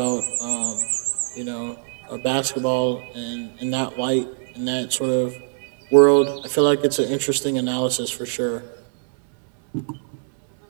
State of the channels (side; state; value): left; silent; 64 dB below the other